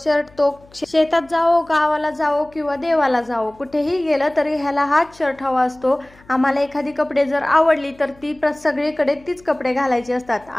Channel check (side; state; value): left; noise; hum, 27 dB below the sound